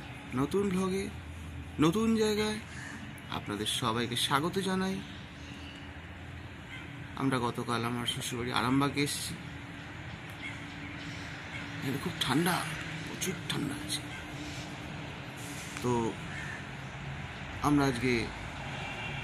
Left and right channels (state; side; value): identical; both; correlation 1.00